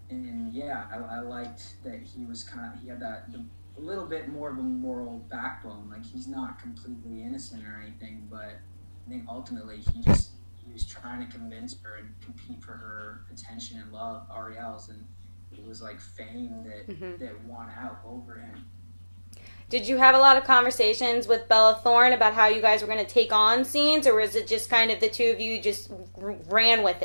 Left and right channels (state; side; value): inverted; both; correlation -1.00